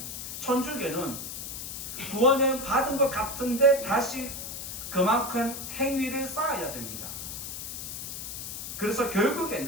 천주교는 구원을 받은 것 같은데 다시 그만큼 행위를 쌓아야 됩니다. 그래서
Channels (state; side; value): noise; left; hiss, 7 dB below the sound